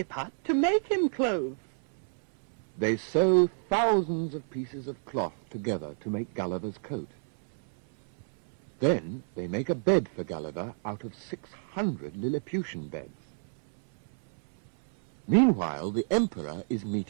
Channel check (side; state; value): left; silent; 58 dB below the other